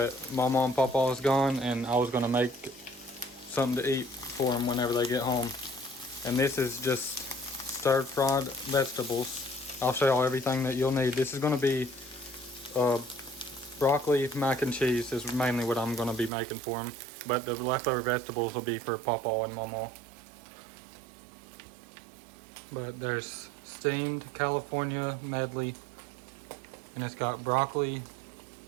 Mama and Papa is gone and I was going to make something to eat for them whenever they get home. And this is just stir-fried vegetables. I'll show y'all everything that you'll need. This is going to be broccoli, mac and cheese is mainly what I'm going to be making for them, but the leftover vegetables will be for Papa and Mama. But there's steamed California medley, and it's got broccoli,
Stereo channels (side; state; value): left; drops out; at 16.3 s